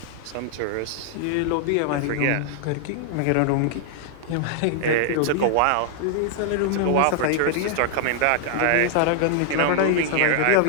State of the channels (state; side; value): different; both; correlation -0.01